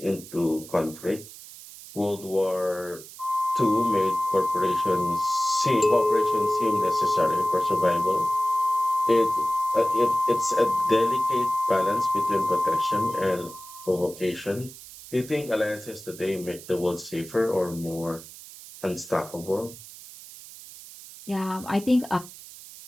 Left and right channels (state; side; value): noise; right; hiss, 16 dB below the sound